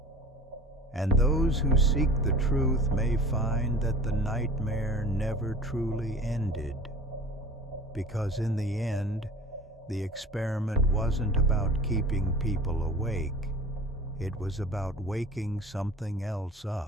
And those who seek the truth may find that the nightmare never truly ended, because in the end, the experiment wasn't about keeping people awake. It was about waking something else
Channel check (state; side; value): normal; both; correlation 0.41